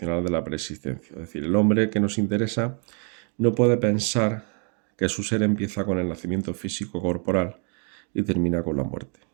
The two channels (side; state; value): left; quieter; 39.7 dB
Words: de la preexistencia. Es decir, el hombre que nos interesa no puede pensar que su ser empieza con el nacimiento físico corporal y termina con la muerte.